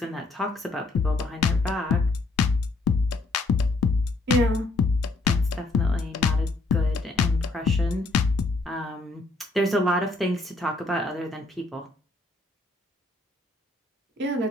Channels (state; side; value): quieter; right; 3.1 dB